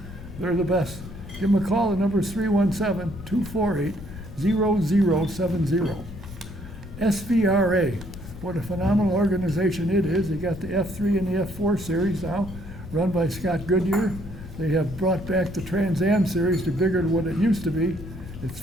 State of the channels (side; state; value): left; noise; rumble, 13 dB below the sound